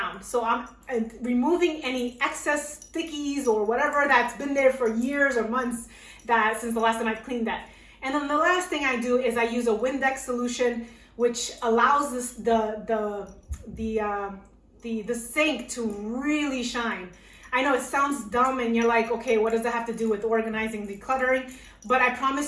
So I'm removing any excess stickies or whatever that's been there for years or months since the last time I've cleaned that. And then the last thing I do is I use a Windex solution, which allows the sink to really shine. I know it sounds dumb and you're like, okay, what does that have to do with organizing, decluttering? But I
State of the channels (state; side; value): identical; both; correlation 1.00